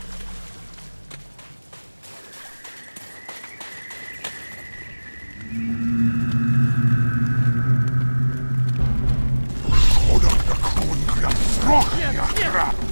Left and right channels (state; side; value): inverted; both; correlation -1.00